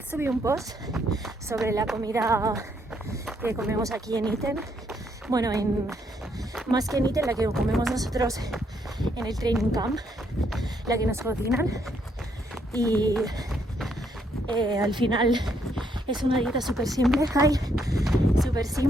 subí un post sobre la comida que comemos aquí en Iten. Bueno, más que en Iten, la que comemos nosotros en el training camp, la que nos cocinan. Y al final es una dieta súper simple,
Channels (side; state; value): both; normal; correlation 0.73